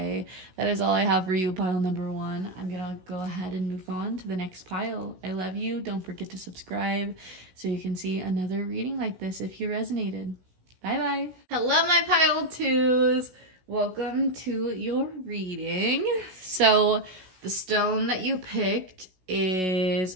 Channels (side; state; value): left; late; 16 ms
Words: That is all I have for you, pile number 1. I'm gonna go ahead and move on to the next pile. I love you. Don't forget to subscribe so you can see another reading like this if you resonated. Bye-bye. Hello, my pile 2s. Welcome to your reading. So the stone that you picked is